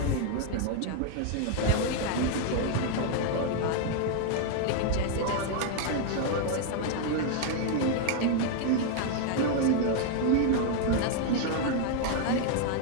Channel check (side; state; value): both; different; correlation 0.01